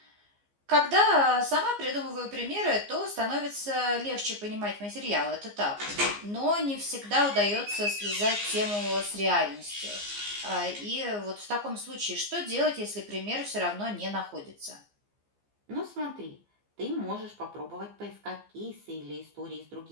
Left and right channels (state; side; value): late; left; 15 ms